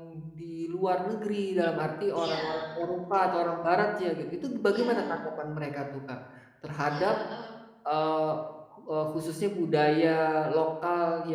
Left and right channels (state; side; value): identical; both; correlation 1.00